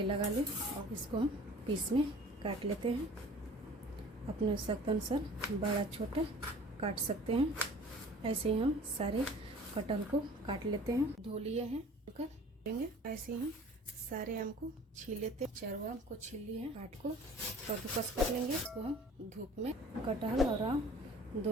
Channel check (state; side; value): normal; both; correlation 0.47